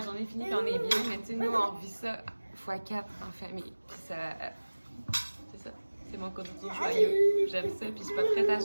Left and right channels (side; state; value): both; inverted; correlation -1.00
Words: journée est finie puis on est bien. Mais tu sais, nous, on vit ça x4 en famille. Puis ça. C'est ça. C'est mon côté toujours joyeux. J'aime ça, puis je suis pas prête à